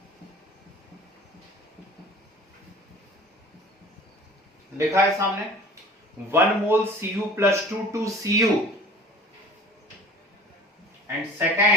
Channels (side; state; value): both; normal; correlation 0.44